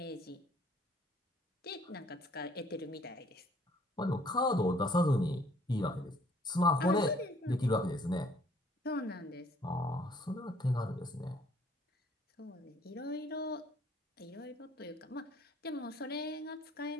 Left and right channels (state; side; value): normal; both; correlation 0.60